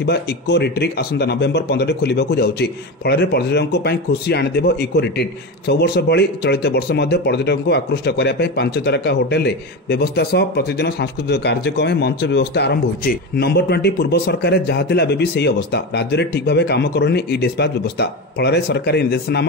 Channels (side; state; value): both; normal; correlation 0.20